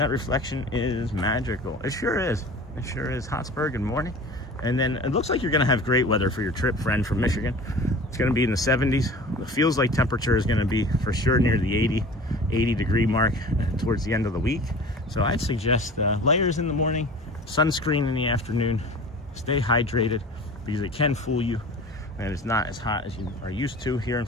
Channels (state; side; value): normal; both; correlation 0.40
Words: reflection is magical. It sure is. It sure is. Hotspur, good morning. And then it looks like you're going to have great weather for your trip, friend, from Michigan. It's going to be in the 70s. It feels like temperature is going to be for sure near the 80 degree mark towards the end of the week. So I'd suggest layers in the morning, sunscreen in the afternoon. Stay hydrated, because it can fool you, and it's not as hot as you are used to here in